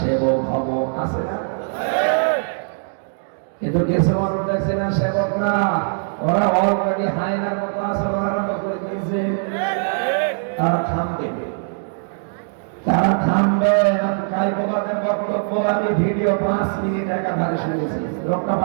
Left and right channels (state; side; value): silent; left; digital silence